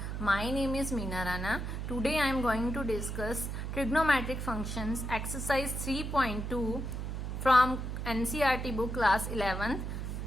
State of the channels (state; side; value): noise; right; hum, 4 dB below the sound